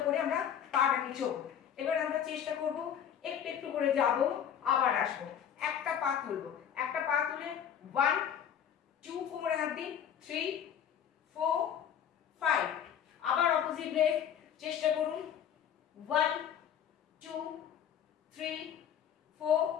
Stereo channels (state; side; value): quieter; right; 8.9 dB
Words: করে আমরা পাটাকে চোখ। এবার আমরা চেষ্টা করব একটু একটু করে যাব, আবার আসবো। একটা পা তুলবো, একটা পা তুলে 1 2 কোমরে হাত দিন, 3 4 5। আবার অপোজিট লেগ চেষ্টা করুন, 1 2 3 4